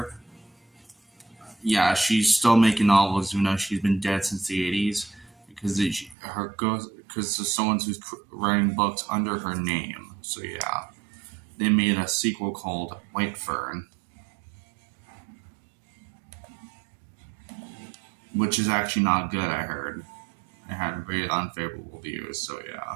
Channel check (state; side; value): drops out; left; at 6.2 s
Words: Yeah, she's still making novels even though she's been dead since the 80s, because there's someone who's writing books under her name. So yeah, they made a sequel called White Fern, which is actually not good, I heard. It had very unfavorable views, so